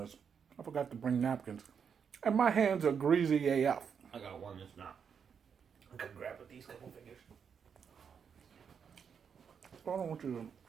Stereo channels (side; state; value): left; quieter; 6.9 dB